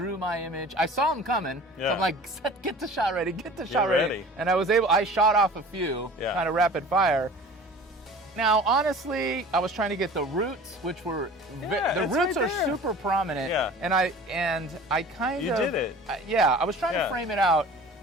my image. I saw him coming, so I'm like, get the shot ready, get the shot ready. And I shot off a few, kind of rapid fire. Now, honestly, I was trying to get the roots, which were the roots are super prominent. Yeah. And I kind of you did it. I was trying to frame it out.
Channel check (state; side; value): normal; both; correlation 0.42